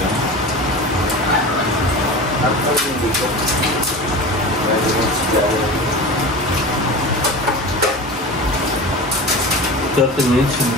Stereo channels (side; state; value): both; normal; correlation 0.31